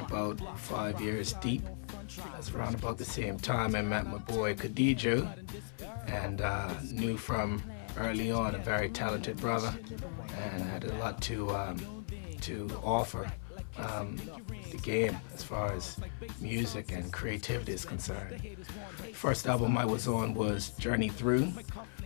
5 years deep. That's around about the same time I met my boy KHADIJO, and knew from early on a very talented brother, and had a lot to offer the game as far as music and creativity is concerned. First album I was on was Journey Through,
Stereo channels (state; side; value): silent; right; 53 dB below the other